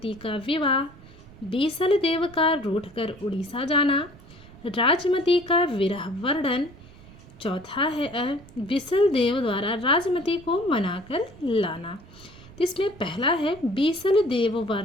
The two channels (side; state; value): right; noise; rumble, 21 dB below the sound